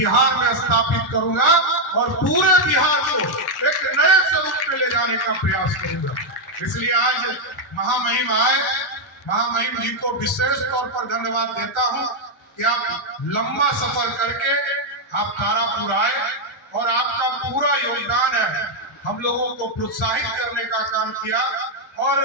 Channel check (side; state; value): both; normal; correlation 0.00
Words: में स्थापित करूंगा, और पूरे बिहार को एक नए स्वरूप में ले जाने का प्रयास करूंगा। इसलिए आज महामहिम आए, महामहिम जी को विशेष तौर पर धन्यवाद देता हूं कि आप लंबा सफर करके आप तारापुर आए, और आपका पूरा योगदान है हम लोगों को प्रोत्साहित करने का काम किया। और